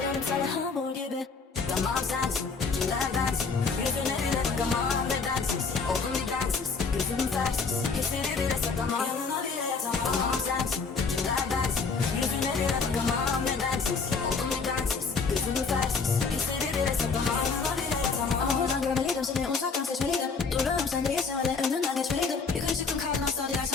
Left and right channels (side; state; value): right; quieter; 4.9 dB